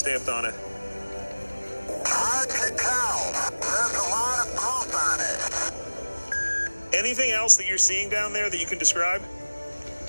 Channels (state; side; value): inverted; both; correlation -1.00